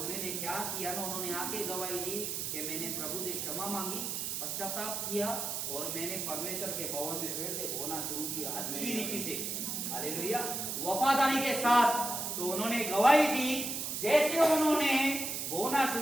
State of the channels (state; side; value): noise; right; hiss, 3 dB below the sound